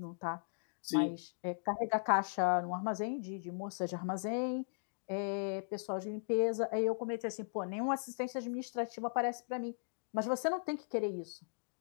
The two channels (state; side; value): silent; right; digital silence